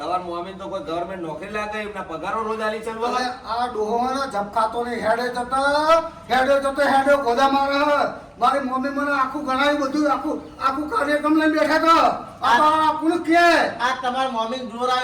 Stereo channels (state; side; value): identical; both; correlation 1.00